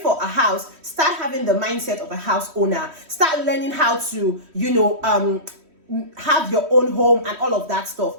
for a house, start having the mindset of a house owner. Start learning how to, have your own home and all of that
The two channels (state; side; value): late; left; 3.1 ms